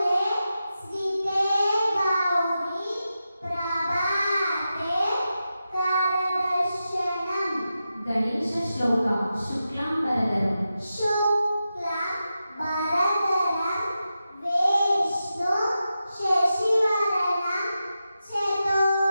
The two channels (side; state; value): both; inverted; correlation -0.90